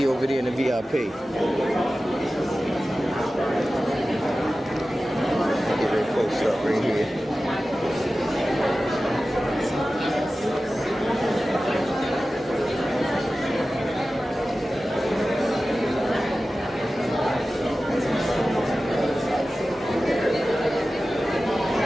over there in the VIP. Get very close up right here.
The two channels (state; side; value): normal; both; correlation 0.95